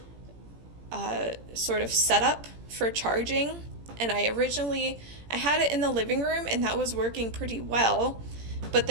sort of setup for charging. And I had it in the living room, and that was working pretty well, but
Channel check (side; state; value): left; late; 17 ms